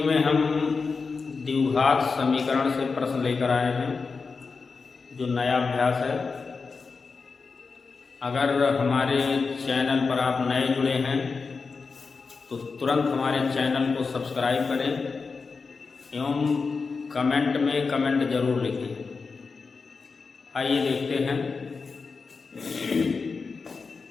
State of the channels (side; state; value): right; quieter; 4.7 dB